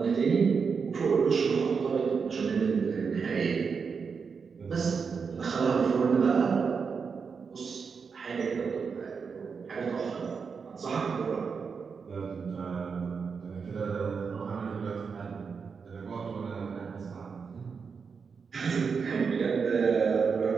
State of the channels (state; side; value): quieter; left; 5.6 dB